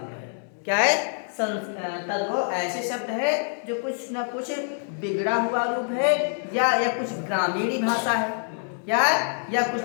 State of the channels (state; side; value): silent; right; digital silence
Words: क्या है, तद्भव ऐसे शब्द है जो कुछ ना कुछ बिगड़ा हुआ रूप है, या कुछ ग्रामीणी भाषा है, या कुछ